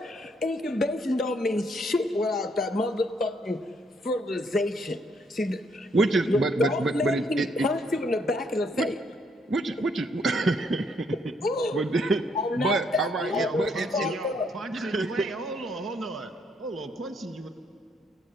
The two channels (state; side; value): normal; both; correlation 0.71